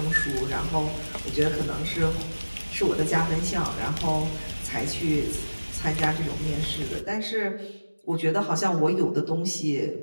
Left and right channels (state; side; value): inverted; both; correlation -1.00